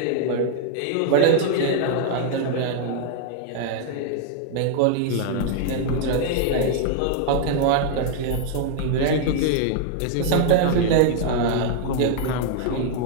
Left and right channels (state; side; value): different; both; correlation -0.01